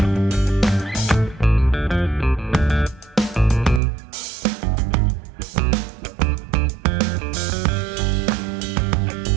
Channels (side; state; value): left; drops out; at 3.8 s